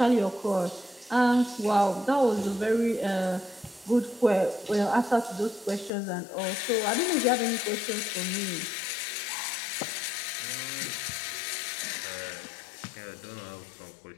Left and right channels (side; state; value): right; drops out; at 5.9 s